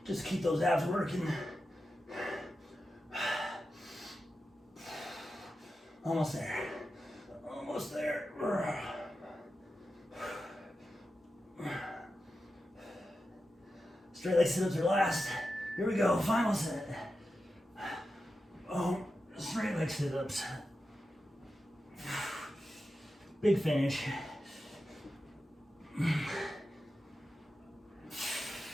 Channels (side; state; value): both; normal; correlation 0.91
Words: Just keep those abs working. Almost there. Almost there. Straight leg sit-ups are last. Here we go, final set. Oh, straight leg sit-ups. Big finish.